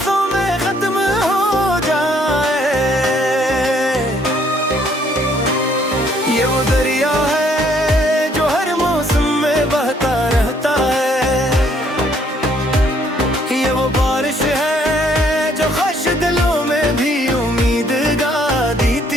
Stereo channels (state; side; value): normal; both; correlation 0.65